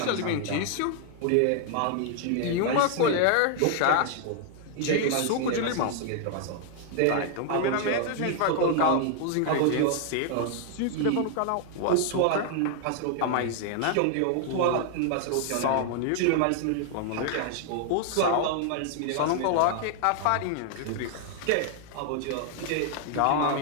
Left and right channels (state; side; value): different; both; correlation 0.00